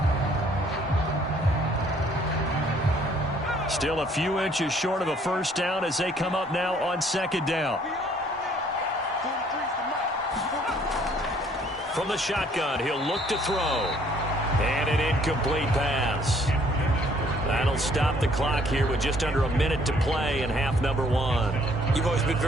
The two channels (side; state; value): both; normal; correlation 0.61